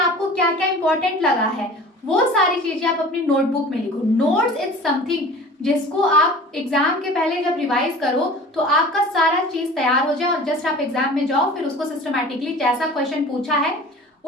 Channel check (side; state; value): both; normal; correlation 0.41